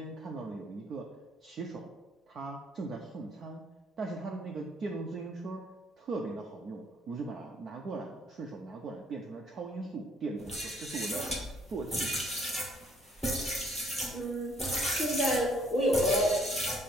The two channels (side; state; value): both; normal; correlation 0.63